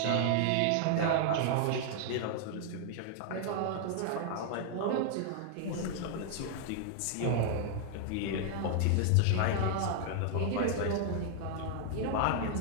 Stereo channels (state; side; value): different; both; correlation 0.00